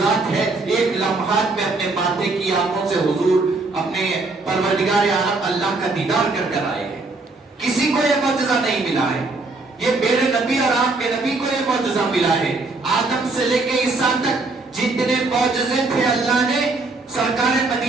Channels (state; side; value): quieter; left; 3.4 dB